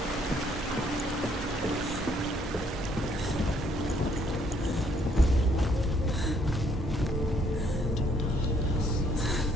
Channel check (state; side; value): normal; both; correlation 0.67